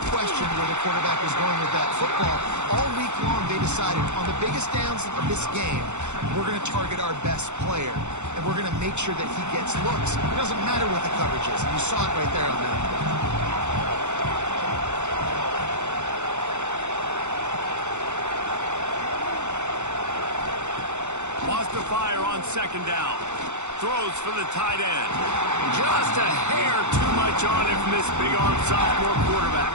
question where the quarterback was going with that football. All week long, they decided on the biggest downs of this game, we're going to target our best player, and we're going to make sure that he gets looks. It doesn't matter what the coverage is. And you saw it right there on that play. Wants to fire on second down. Throws for the tight end. Just a hair too much on it from this big-arm sophomore quarterback.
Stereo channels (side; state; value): left; late; 0.83 ms